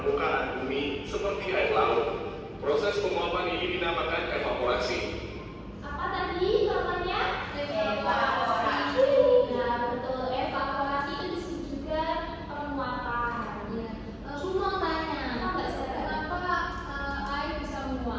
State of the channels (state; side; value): identical; both; correlation 1.00